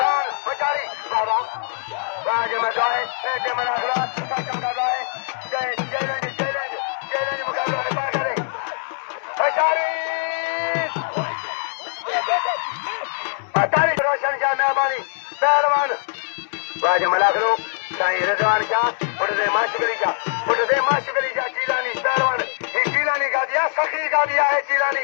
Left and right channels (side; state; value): right; silent; 64 dB below the other